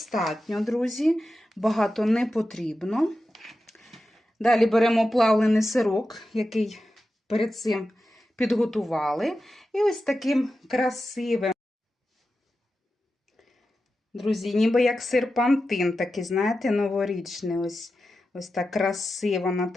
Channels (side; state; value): both; normal; correlation 0.91